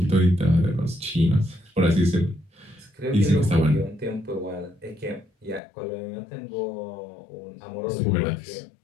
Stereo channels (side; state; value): right; drops out; at 5.6 s